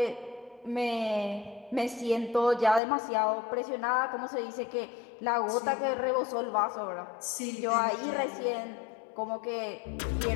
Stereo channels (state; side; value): drops out; right; at 2.8 s